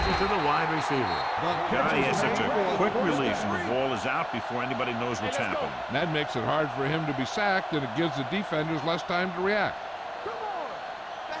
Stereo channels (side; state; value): both; identical; correlation 1.00